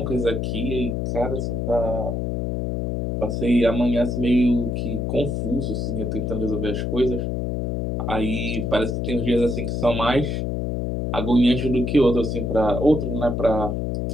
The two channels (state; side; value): noise; left; hum, 1 dB below the sound